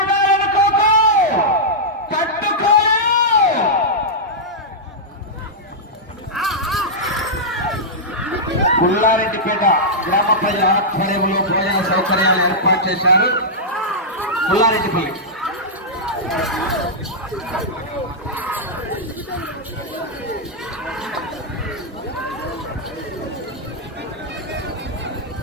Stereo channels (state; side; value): normal; both; correlation -0.10